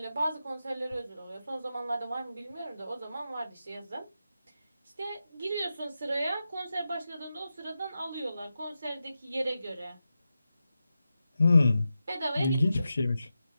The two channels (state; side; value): inverted; both; correlation -0.90